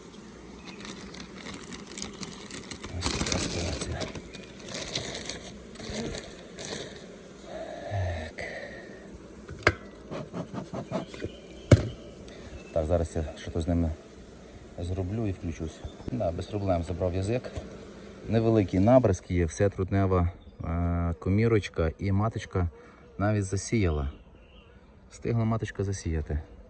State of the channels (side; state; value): both; identical; correlation 1.00